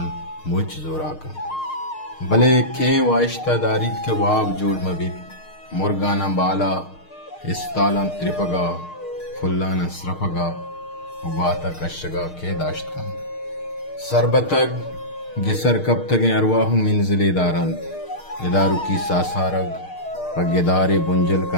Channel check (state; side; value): late; right; 6.5 ms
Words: मुझ जोराकन भले के वाइश्ता दारिद के वाब जोड़ मबित मुर्गाना बाला इस्तालन त्रिपगा फुल्लाना स्रफगा उबाता कशगा के दाश्तकन सरबतग गिसर कब तक अरवाहु मिनजिले दारंत इदारू की सासारग पगेदारे बुंजल